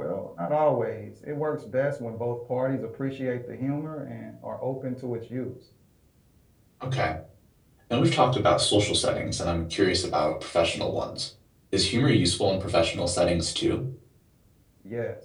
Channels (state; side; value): identical; both; correlation 1.00